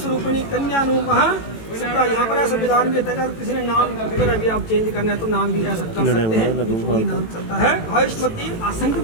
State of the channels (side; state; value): right; late; 18 ms